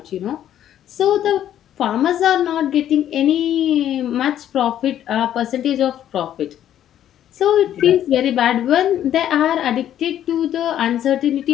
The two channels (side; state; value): right; quieter; 11.1 dB